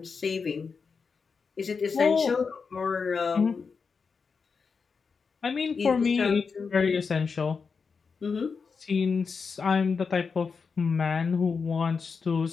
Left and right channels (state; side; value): quieter; right; 5.3 dB